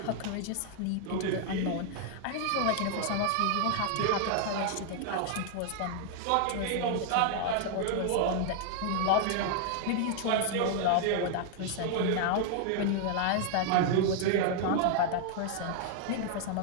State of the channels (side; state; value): both; different; correlation 0.00